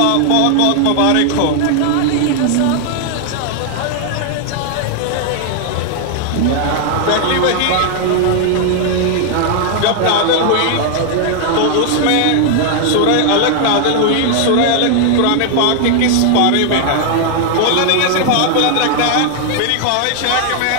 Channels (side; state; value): both; different; correlation 0.00